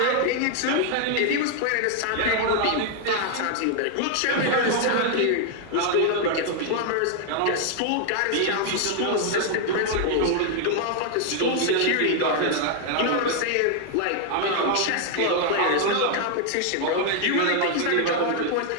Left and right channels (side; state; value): both; different; correlation 0.00